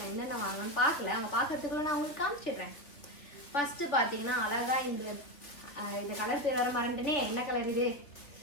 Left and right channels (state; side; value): late; right; 3.4 ms